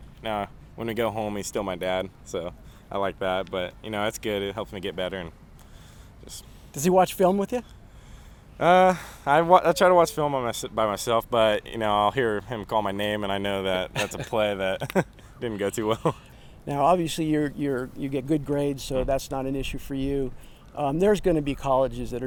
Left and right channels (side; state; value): both; identical; correlation 1.00